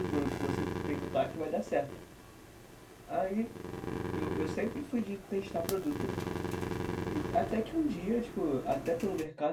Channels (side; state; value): both; identical; correlation 1.00